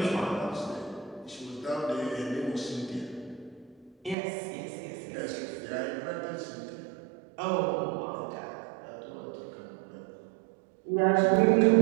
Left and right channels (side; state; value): left; drops out; at 4.2 s